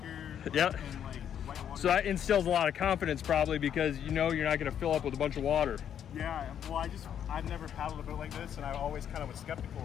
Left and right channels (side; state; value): right; quieter; 9.2 dB